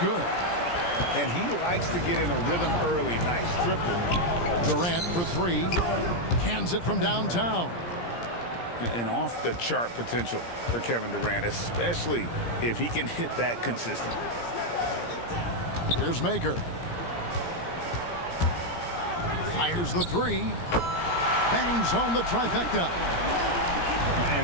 And he likes to get in a rhythm early. Nice triple. Durant for three. Cans it from downtown. And off-the-chart potential for Kevin Durant, especially if he can hit that consistently. Here's Maker. Fires the three. Bangs home the trifecta.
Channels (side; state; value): right; late; 17 ms